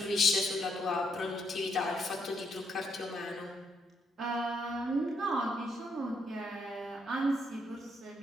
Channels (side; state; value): both; normal; correlation 0.75